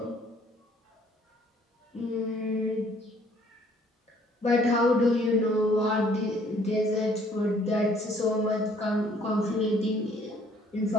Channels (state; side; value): normal; both; correlation 0.61